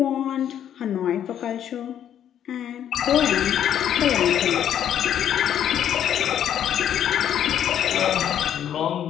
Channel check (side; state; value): right; quieter; 10.0 dB